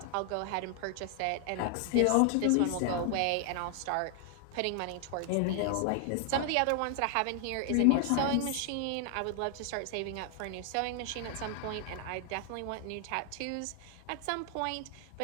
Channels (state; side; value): different; both; correlation 0.00